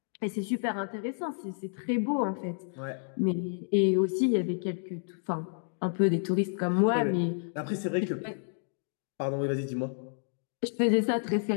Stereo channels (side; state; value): right; silent; digital silence